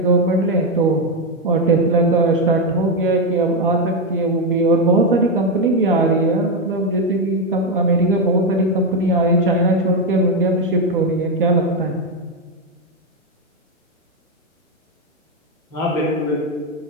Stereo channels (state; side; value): normal; both; correlation 0.06